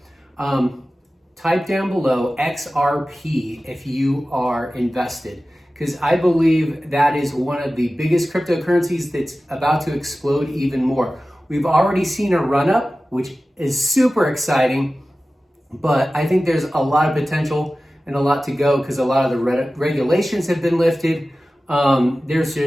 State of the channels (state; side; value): normal; both; correlation 0.96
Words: Type down below XRP if you are invested, because I believe that is one of the biggest cryptocurrencies that's about to explode even more. We've already seen a run up, which is super exciting, but I think there's a lot of potential and a lot to go because a lot of the regulations have been lifted. There's